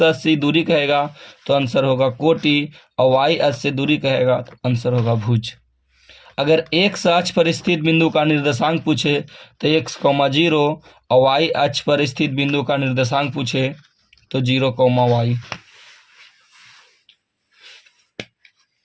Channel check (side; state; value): both; identical; correlation 1.00